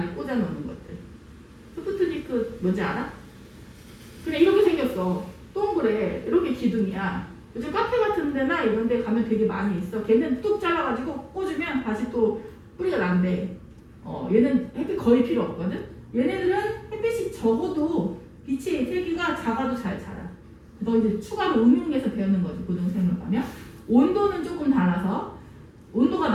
꽂아놓는 것들. 스푸트니크 뭔지 알아? 그냥 이렇게 생겼어. 동그래. 이렇게 기둥이야. 요즘 카페 같은 데나 이런 데 가면 되게 많이 있어. 걔는 뚝 잘라가지고 꽂으면 다시 또 뿌리가 난대. 얘는 햇빛 거의 필요 없거든? 얘네들은 햇빛이 적어도 빛의 세기가 작아도 잘 자라. 그래서 이제 추가로 응용해서 배우는 거지, 고등생물 가면. 온도는 조금 달라서, 온도가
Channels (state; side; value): identical; both; correlation 1.00